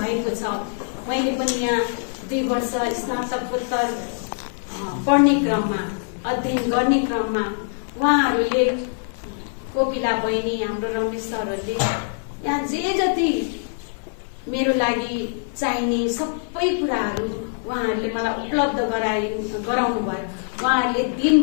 छ। मैले पनि यहाँ 2 वर्ष स्नातकोत्तर पढ्ने क्रममा, अध्ययन गर्ने क्रममा उहाँहरूले, कोपिला बहिनी, हाम्रो रमेश सरहरूले यहाँ जे जति मेरो लागि चाहिने सबै कुराहरू उहाँहरूले मलाई उपलब्ध गराउनु भयो। उहाँहरूले दिन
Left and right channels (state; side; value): silent; right; digital silence